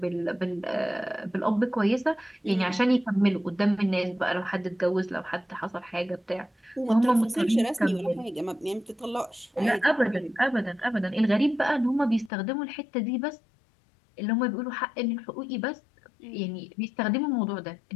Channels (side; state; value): right; drops out; at 12.3 s